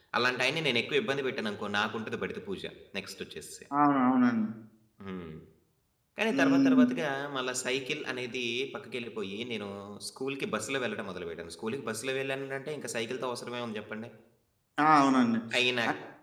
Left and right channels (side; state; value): both; identical; correlation 1.00